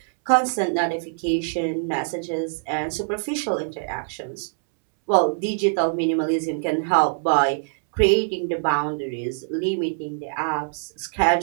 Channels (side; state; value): left; silent; 63 dB below the other